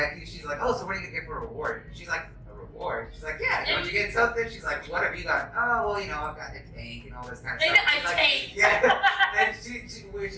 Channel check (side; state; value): both; identical; correlation 1.00